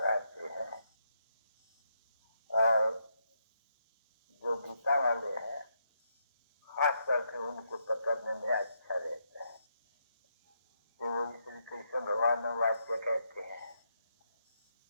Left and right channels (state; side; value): inverted; both; correlation -0.79